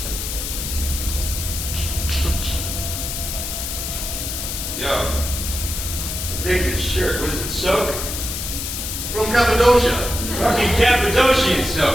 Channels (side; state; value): left; noise; hiss, 5 dB below the sound